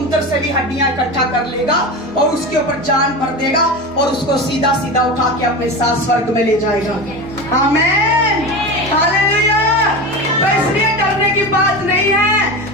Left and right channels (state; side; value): normal; both; correlation 0.26